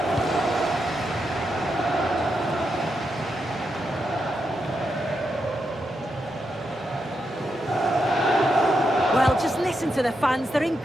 Well, just listen to the fans. They're in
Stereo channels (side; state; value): both; normal; correlation 0.84